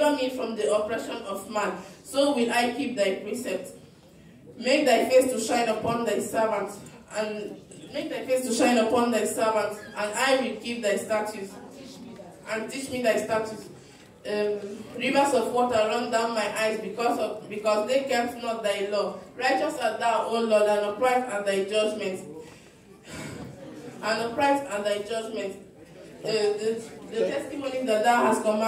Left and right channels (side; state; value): both; identical; correlation 1.00